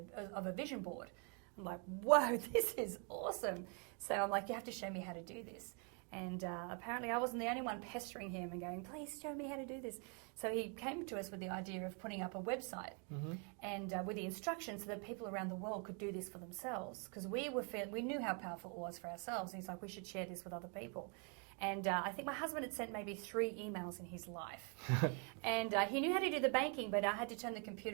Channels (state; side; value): quieter; left; 37.1 dB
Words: a vision board. I'm like, whoa, this is awesome. So I'm like, you have to show me how to do this. And apparently I wasn't the only one pestering him and going, please show me how to do this. So he came to us with the idea of putting up a website and with the instructions so that people around the world could do this for themselves. Because we knew how powerful it was for ourselves. And he's like, we should share this with other people. And I think my husband had sent maybe 3 emails in his life. And he knew how to do the banking, but I had to turn the